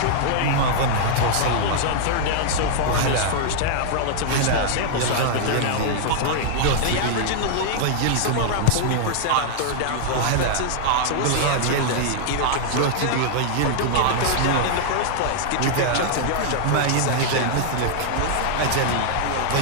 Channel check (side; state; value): both; different; correlation -0.01